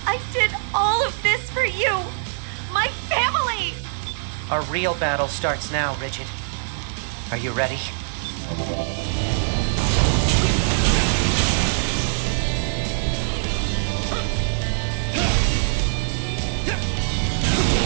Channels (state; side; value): silent; left; digital silence